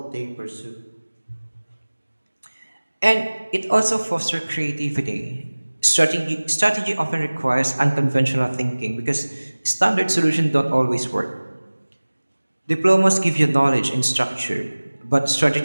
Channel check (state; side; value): inverted; both; correlation -1.00